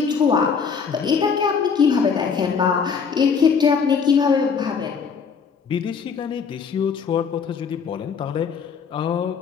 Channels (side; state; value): right; quieter; 6.1 dB